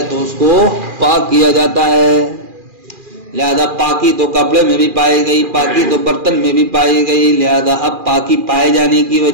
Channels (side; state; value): left; late; 2.4 ms